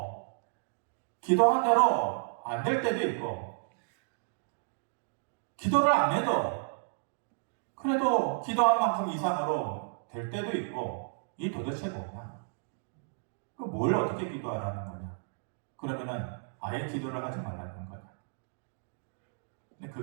기도한 대로 안 될 때도 있고, 기도를 안 해도 그래도 기도한 만큼 이상으로 될 때도 있고, 이 도대체 뭐냐? 뭘 어떻게 기도하라는 거냐? 그러면은 아예 기도를 하지 말라는 거냐? 근데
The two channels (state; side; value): silent; left; digital silence